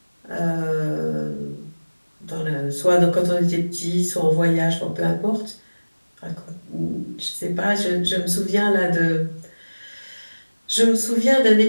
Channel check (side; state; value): both; inverted; correlation -1.00